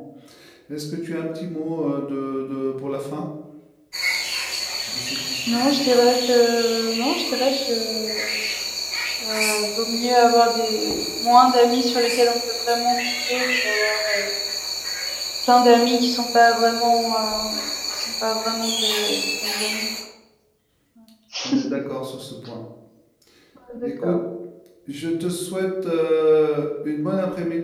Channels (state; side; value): identical; both; correlation 1.00